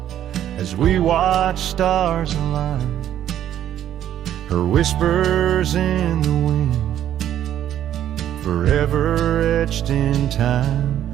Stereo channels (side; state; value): left; quieter; 11.1 dB